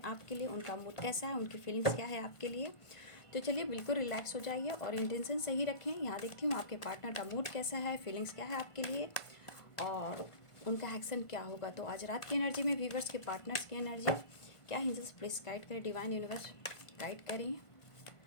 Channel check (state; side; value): late; right; 1.5 ms